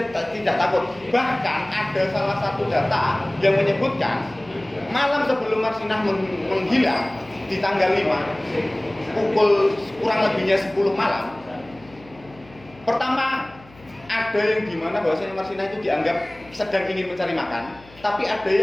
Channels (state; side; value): noise; left; hum, 24 dB below the sound